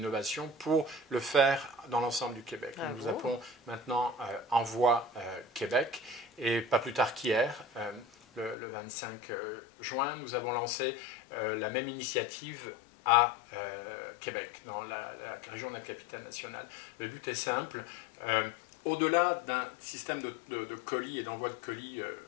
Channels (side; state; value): right; drops out; at 8.6 s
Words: pour le faire dans l'ensemble du Québec. Nous appelons maintenant Envoi Québec. Et pas plus tard qu'hier, le 25 juin, nous avons lancé la même initiative à Québec, dans la région de la capitale nationale. Le but est simple. Au-delà d'un système de colis et d'envoi de colis